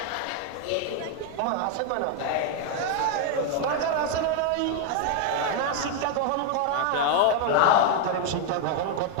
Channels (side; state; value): both; different; correlation 0.00